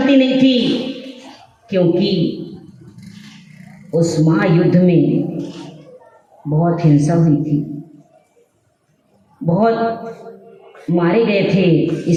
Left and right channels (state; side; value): identical; both; correlation 1.00